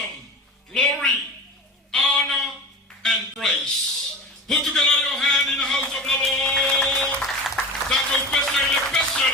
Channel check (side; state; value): both; normal; correlation 0.31